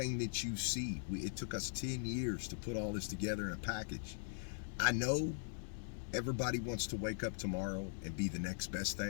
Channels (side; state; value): right; silent; digital silence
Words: that you see, it took us 10 years to put all this together in a package. I know everybody wants to wake up tomorrow and be the next best